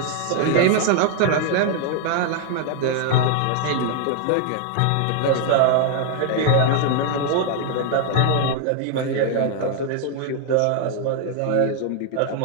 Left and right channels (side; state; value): both; different; correlation 0.00